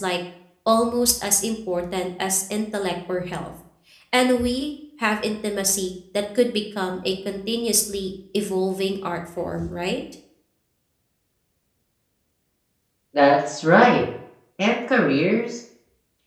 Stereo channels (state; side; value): identical; both; correlation 1.00